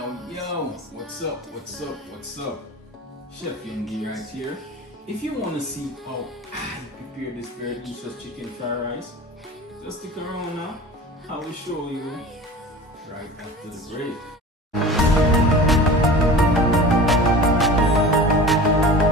What's up? Chef Youngie right here. If you want to see how I prepare this very delicious chicken fried rice, just stick around now. I will show you right after the break.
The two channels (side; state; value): both; normal; correlation 0.37